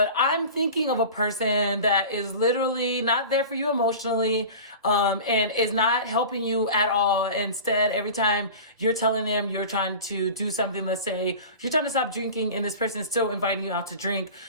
I'm thinking of a person that is literally not there for you emotionally, and is not helping you at all. Instead, every time you're telling them you're trying to do something, let's say you're trying to stop drinking and this person is still inviting you out to drink,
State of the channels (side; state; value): both; inverted; correlation -0.35